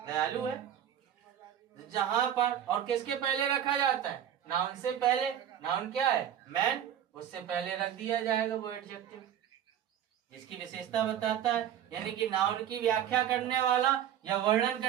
दयालु है। जहां पर और किसके पहले रखा जाता है? नाउन से पहले। नाउन क्या है? मैन, उससे पहले रख दिया जाएगा वो एडजेक्टिव जिसकी विशेषता बताता है। यानी कि नाउन की व्याख्या करने वाला या वर्णन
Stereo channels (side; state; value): left; quieter; 10.1 dB